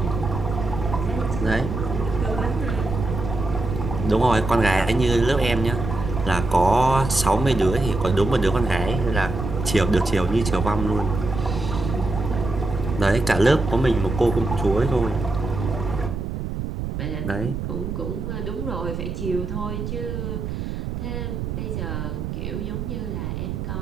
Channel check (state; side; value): noise; right; rumble, 5 dB below the sound